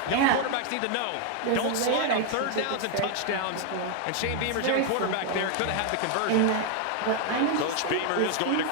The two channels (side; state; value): both; different; correlation 0.00